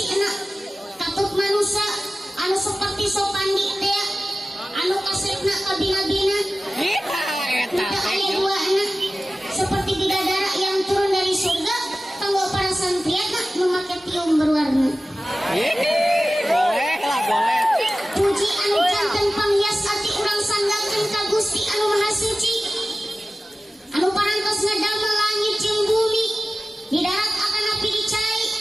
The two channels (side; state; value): both; normal; correlation 0.96